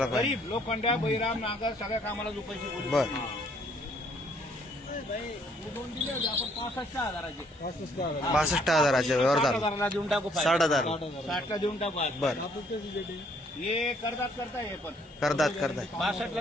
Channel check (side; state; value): both; normal; correlation 0.65